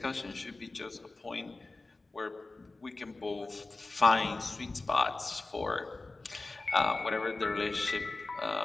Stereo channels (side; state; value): right; quieter; 3.3 dB